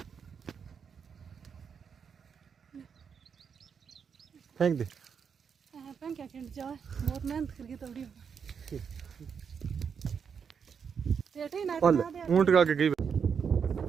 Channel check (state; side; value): quieter; left; 6.7 dB